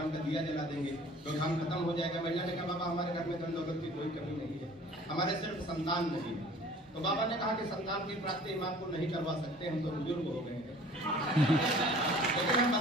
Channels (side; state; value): both; normal; correlation 0.49